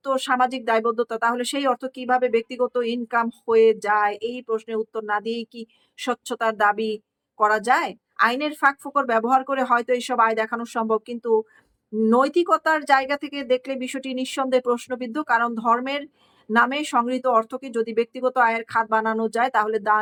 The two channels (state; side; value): identical; both; correlation 1.00